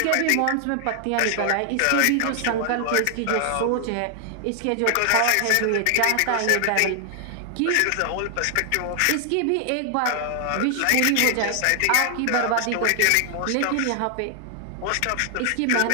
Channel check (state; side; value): different; both; correlation 0.00